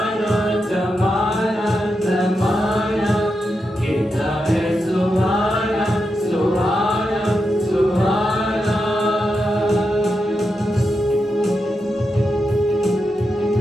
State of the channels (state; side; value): normal; both; correlation 0.87